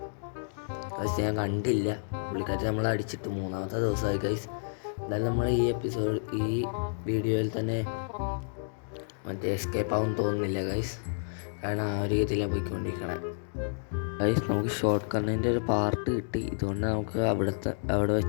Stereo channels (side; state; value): right; silent; 58 dB below the other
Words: ഗൈസ്, ഞാൻ കണ്ടില്ല. പുള്ളിക്കാരി നമ്മളെ അടിച്ചിട്ട് 3-ാമത്തെ ദിവസമായി ഗൈസ്. എന്തായാലും നമ്മൾ ഈ വീഡിയോയിൽ തന്നെ മറ്റേ എസ്കേപ്പ് ആവും തോന്നുന്നില്ല ഗൈസ്, കാരണം ആ ഒരു രീതിയിലാണ് പോയിക്കൊണ്ടിരിക്കണേ ഗൈസ്. നമുക്ക് ഷോർട്ട് കണ്ണിൻ്റെ ഒരു പാർട്ട് കിട്ടി. ഇതുകൊണ്ട് നമുക്ക് അവിടെ